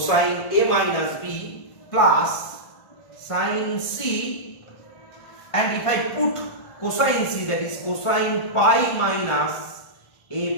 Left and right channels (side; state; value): right; late; 1.5 ms